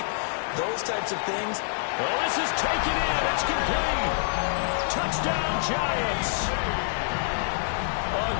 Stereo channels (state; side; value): silent; right; 56 dB below the other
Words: those types of things. Well, this is taken in. It's complete. Touchdown, Giants. A